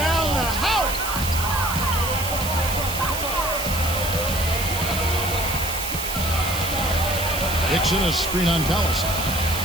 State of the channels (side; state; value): right; noise; hiss, 6 dB below the sound